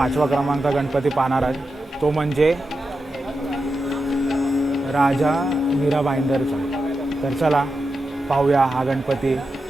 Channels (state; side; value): normal; both; correlation 0.89